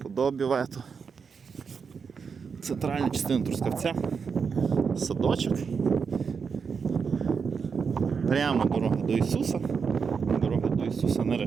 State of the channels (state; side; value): quieter; left; 5.9 dB